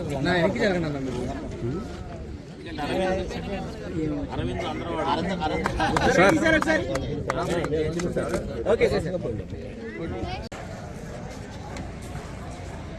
నా వెనక్కి జరగండి అన్న. Okay sir.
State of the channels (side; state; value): both; identical; correlation 1.00